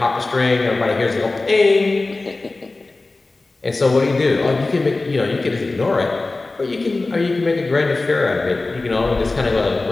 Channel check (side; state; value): right; quieter; 3.3 dB